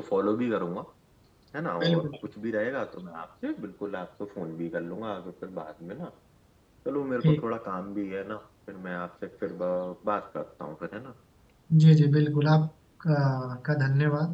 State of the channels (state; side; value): identical; both; correlation 1.00